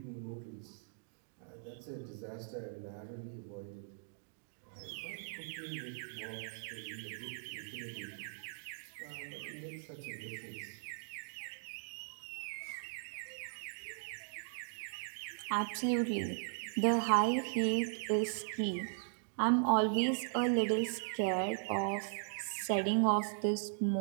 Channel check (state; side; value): silent; left; digital silence